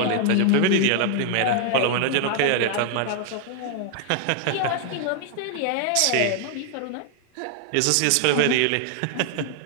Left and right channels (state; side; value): different; both; correlation 0.00